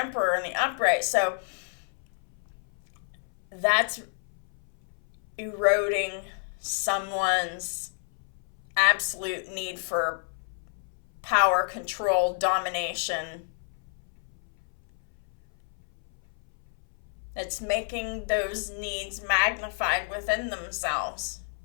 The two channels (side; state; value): right; silent; 58 dB below the other